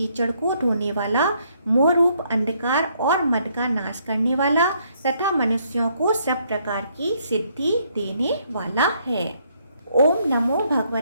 को धोने वाला, मोह रूप अंधकार और मद का नाश करने वाला तथा मनुष्यों को सब प्रकार की सिद्धि देने वाला है। ओम नमो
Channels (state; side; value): inverted; both; correlation -0.70